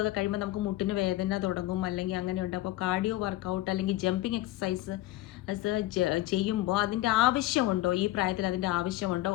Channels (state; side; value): quieter; right; 16.6 dB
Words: ഒക്കെ കഴിയുമ്പോൾ നമുക്ക് മുട്ടിന് വേദന തുടങ്ങും അല്ലെങ്കിൽ അങ്ങനെയുണ്ട്. അപ്പോൾ കാർഡിയോ വർക്കൗട്ട് അല്ലെങ്കിൽ ജമ്പിങ് എക്സസൈസ് ചെയ്യുമ്പോൾ അതിൻ്റെ ആവശ്യമുണ്ടോ, ഈ പ്രായത്തിൽ അതിൻ്റെ ആവശ്യമുണ്ടോ,